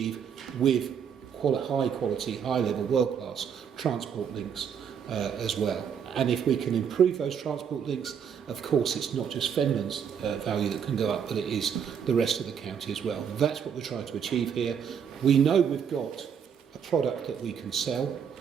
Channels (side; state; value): left; quieter; 7.6 dB